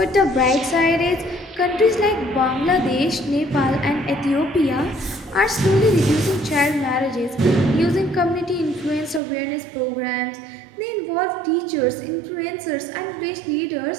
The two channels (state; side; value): drops out; left; at 9.2 s